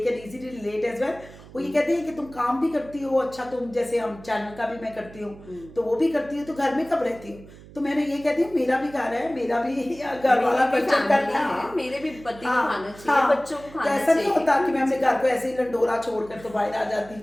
can easily relate as well. वो ये कहते हैं कि तुम काम भी करती हो, अच्छा तुम जैसे हम चैनल का भी मैं करती हूँ तो वो भी करती हूँ, तो घर में कब रहती हूँ? तो मैंने ये कहती हूँ मेरा भी घर है, मेरा भी घर वाला क्वेश्चन करता है, मेरे भी पति को खाना चाहिए, बच्चों को खाना चाहिए। ऐसा नहीं होता कि मैं अपने घर को ऐसे ही लंडोरा छोड़कर तो बाहर आ जाती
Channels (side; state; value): right; noise; hum, 19 dB below the sound